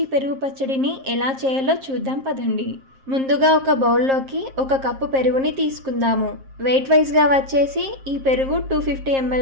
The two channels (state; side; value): late; left; 7.5 ms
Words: పెరుగు పచ్చడిని ఎలా చేయాలో చూద్దాం పదండి. ముందుగా ఒక బౌల్లోకి 1 కప్పు పెరుగుని తీసుకుందాము. వెయిట్ వైజ్గా వచ్చేసి ఈ పెరుగు 250